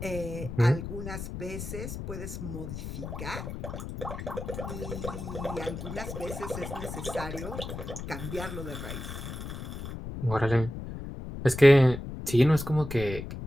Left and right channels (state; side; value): noise; left; rumble, 8 dB below the sound